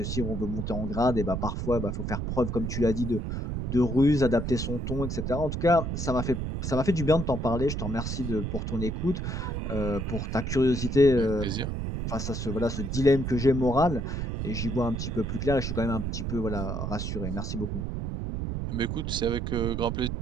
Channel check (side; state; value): right; noise; rumble, 3 dB below the sound